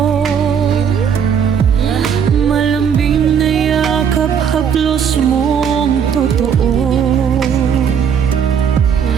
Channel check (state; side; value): quieter; left; 7.5 dB